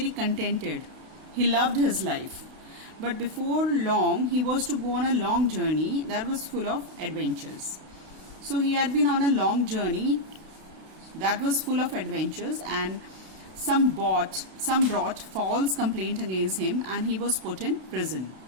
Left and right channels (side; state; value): left; late; 32 ms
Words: contented. He loved his life. But before long he was to go on a long journey that was full of adventures. So he had been on a long journey that was full of adventures, and some brought false complaint against him and he was put in prison.